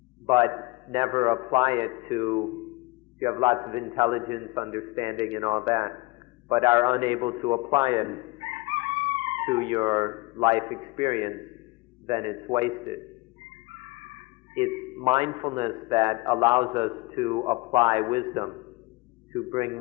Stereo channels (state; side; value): quieter; right; 23.6 dB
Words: but never apply it you have lots of intelligence, understanding, and all that, but are unable to apply it to your life experience, then it's wasted. It's mindfulness that allows us to apply wisdom, to bring